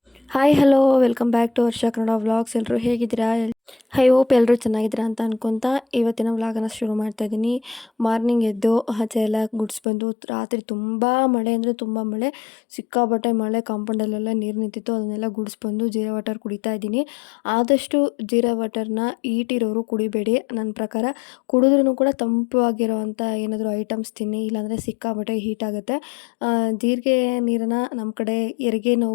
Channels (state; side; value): drops out; right; at 9.8 s